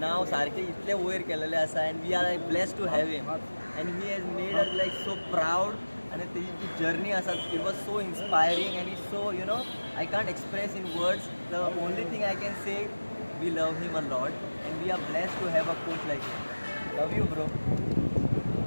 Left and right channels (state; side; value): inverted; both; correlation -1.00